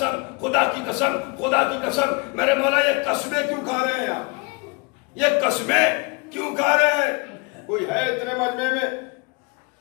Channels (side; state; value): right; quieter; 29.0 dB